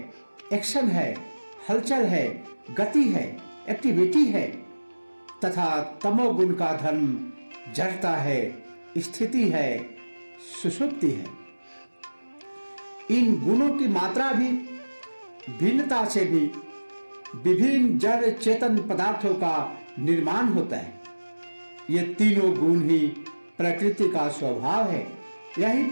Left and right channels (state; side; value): inverted; both; correlation -1.00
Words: एक्शन है, हलचल है, गति है, एक्टिविटी है, तथा तमोगुण का धर्म जड़ता है, स्थिति है, सुषुप्ति है। इन गुणों की मात्रा भी भिन्नता से भी विभिन्न जड़ चेतन पदार्थों का निर्माण होता है। ये तीनों गुण ही प्रकृति का स्वभाव है। यही